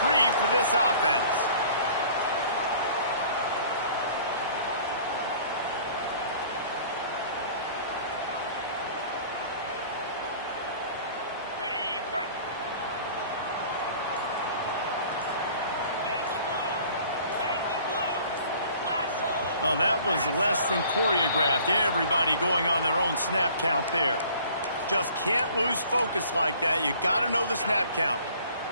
for this offense. Well, that was less than choreographed. Everybody going on their own snap count there. Just can't lose focus like that. You got to know the snap count.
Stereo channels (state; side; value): inverted; both; correlation -0.51